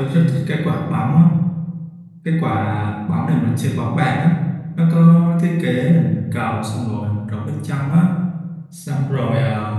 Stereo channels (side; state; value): both; identical; correlation 1.00